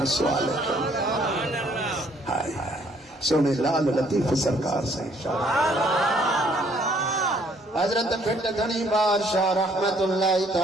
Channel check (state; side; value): normal; both; correlation 0.64